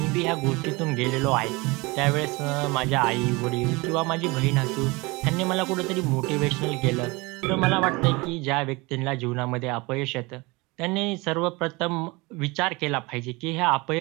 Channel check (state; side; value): quieter; left; 24.7 dB